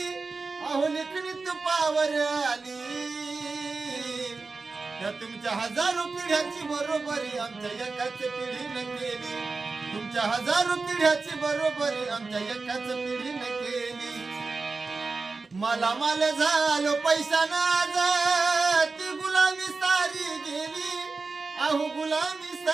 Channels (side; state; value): left; quieter; 4.0 dB